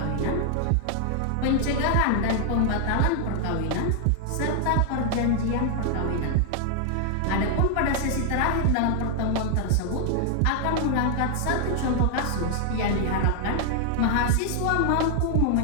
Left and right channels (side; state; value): both; different; correlation 0.00